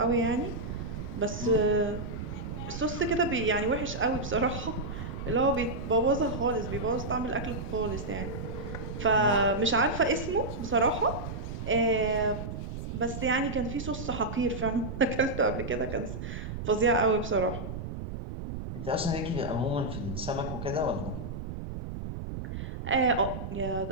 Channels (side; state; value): right; noise; rumble, 7 dB below the sound